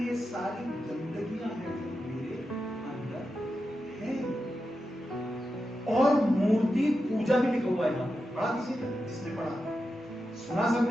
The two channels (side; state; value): both; normal; correlation 0.89